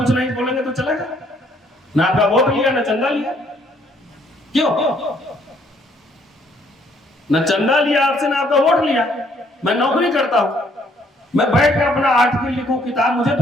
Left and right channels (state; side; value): normal; both; correlation 0.66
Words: नहीं बोलेंगे तो चलेगा ना? आपका वोट लिया ना चंदा लिया, क्यों? ना चंदा लिया आपसे ना आपका वोट लिया। मैं नौकरी करता हूं, मैं बैठ कर अपना आर्टिकल लिखूं, किताब, मुझे